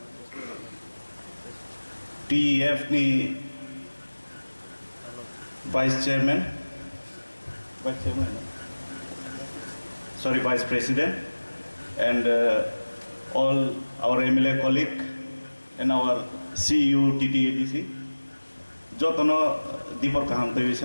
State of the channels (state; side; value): inverted; both; correlation -1.00